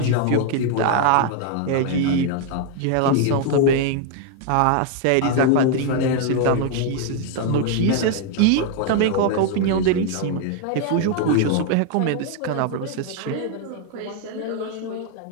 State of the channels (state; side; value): different; both; correlation 0.00